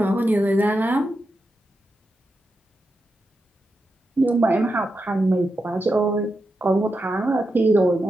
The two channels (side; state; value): both; normal; correlation 0.88